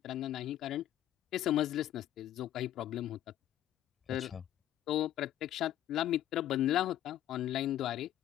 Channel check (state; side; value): quieter; right; 12.3 dB